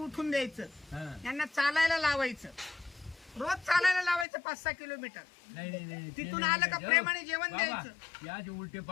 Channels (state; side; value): drops out; right; at 4.2 s